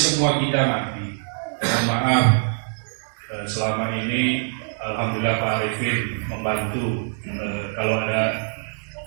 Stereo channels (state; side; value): silent; left; 63 dB below the other